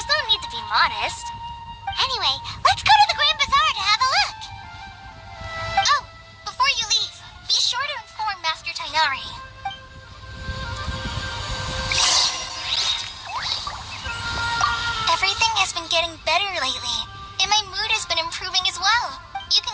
no need to be modest. Anyway, let's go to the Grand Bazaar to have a look. Oh, before you leave, be sure to inform Master Tainari. Everything has been getting better lately, and my mood has been improving as well. You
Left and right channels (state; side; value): identical; both; correlation 1.00